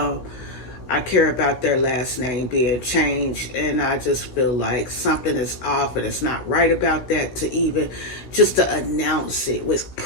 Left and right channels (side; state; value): right; late; 16 ms